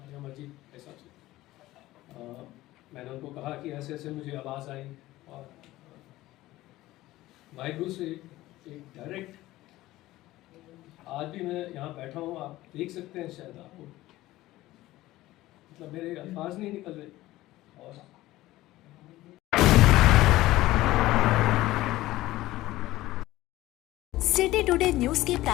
अमर जी के हिसाब से। मैंने उनको कहा कि ऐसे ऐसे मुझे आवाज़ आई और वाहिगुरु से एक डायरेक्ट, आज भी मैं यहाँ बैठा हूँ, आप देख सकते हैं शायद आपको, मतलब मेरे अल्फाज नहीं निकल रहे। और सिटी टुडे न्यूज के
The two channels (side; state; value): right; quieter; 16.8 dB